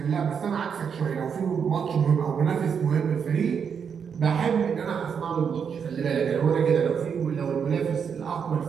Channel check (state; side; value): quieter; left; 6.9 dB